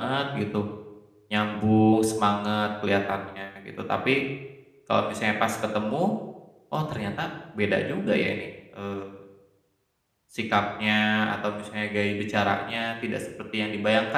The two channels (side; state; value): both; identical; correlation 1.00